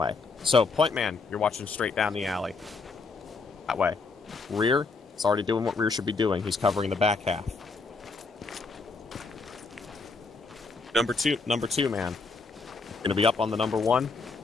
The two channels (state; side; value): quieter; right; 4.2 dB